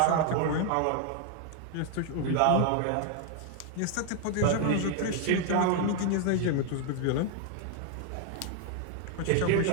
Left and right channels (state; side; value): different; both; correlation 0.00